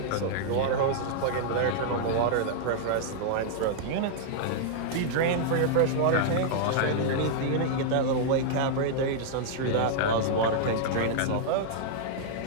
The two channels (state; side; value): different; both; correlation -0.01